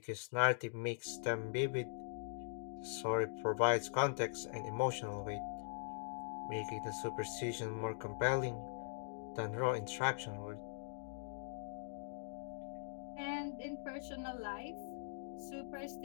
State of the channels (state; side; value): silent; right; digital silence